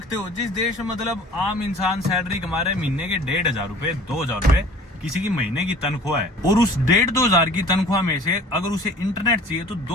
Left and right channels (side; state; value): both; normal; correlation 0.47